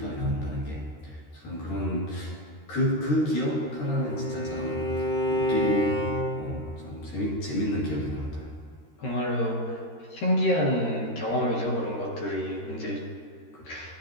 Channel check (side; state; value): right; late; 13 ms